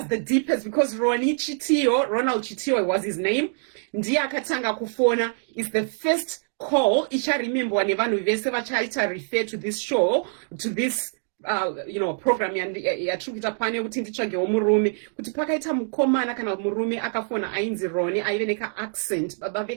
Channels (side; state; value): left; silent; 61 dB below the other